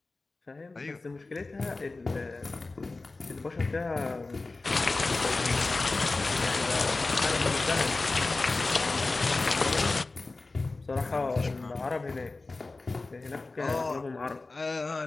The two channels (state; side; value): quieter; right; 3.4 dB